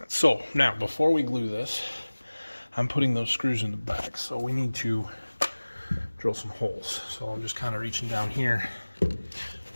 So now, before we glue this, I'm putting those screws in the back. So we need to drill some holes. So I'm just kind of reaching down here.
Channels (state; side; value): inverted; both; correlation -1.00